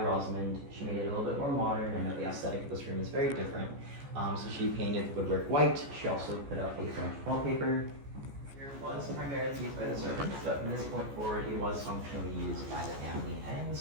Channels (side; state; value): left; late; 14 ms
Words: Rosamond. She made it a little bit more modern, and the aesthetic of this room is very different. So she painted the woodwork white. She also put up a French wallpaper. Here was primarily used by the servants, but from this point forward, it was functionally used by the family and the